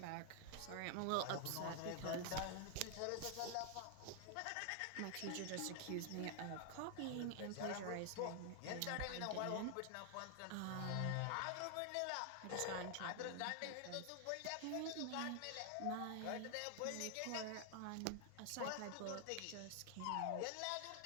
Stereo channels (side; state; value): both; different; correlation 0.00